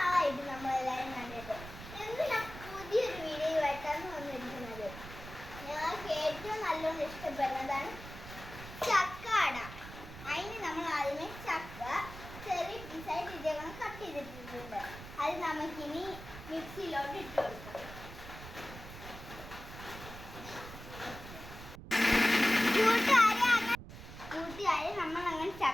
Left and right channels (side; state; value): right; noise; rumble, 13 dB below the sound